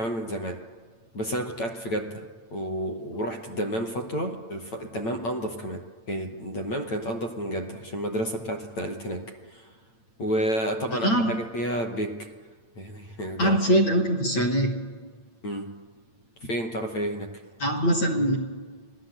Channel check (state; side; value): late; right; 8.9 ms